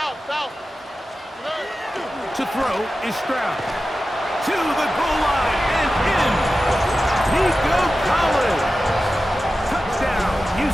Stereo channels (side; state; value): both; normal; correlation 0.94